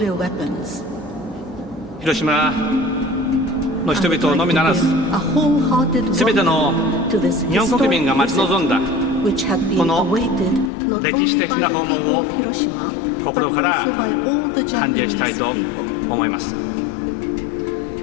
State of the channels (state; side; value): drops out; right; at 10.7 s